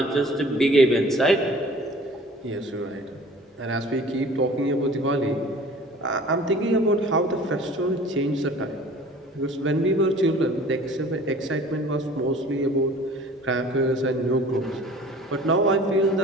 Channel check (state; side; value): normal; both; correlation 0.47